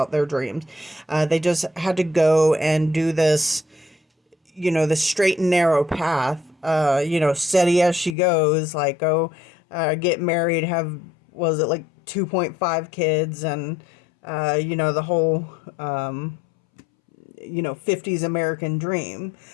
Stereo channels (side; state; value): right; drops out; at 8.2 s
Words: their dreams. They just had to go and do this, the straight and narrow path. Steady as she goes, like go get married, have, was it like 2.5 kids, and the whole 50s American dream.